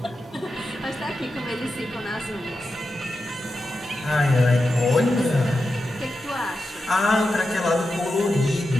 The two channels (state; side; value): normal; both; correlation 0.89